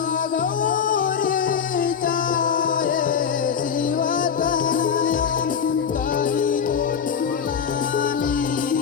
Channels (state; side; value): quieter; right; 7.2 dB